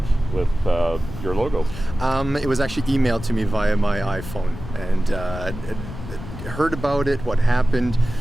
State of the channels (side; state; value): left; noise; rumble, 11 dB below the sound